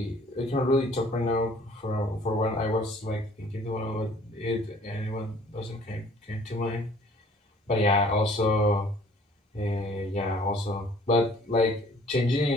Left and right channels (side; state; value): both; normal; correlation 0.55